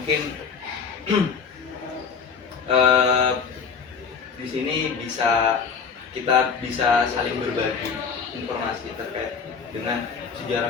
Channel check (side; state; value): right; quieter; 6.0 dB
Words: di sini kita bisa saling berbagi informasi terkait dengan